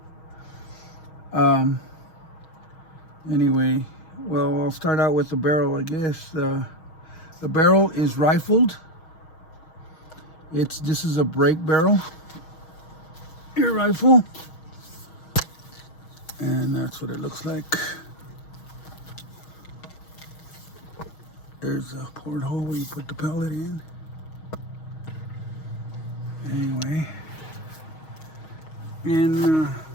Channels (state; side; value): late; right; 6.3 ms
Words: Anyway, well, I'll start out with the barrel, I guess. The barrel is rifled. This is a break barrel, air rifle, and that's what it looks like. There's a porthole where you put the pellet in. Anyway, and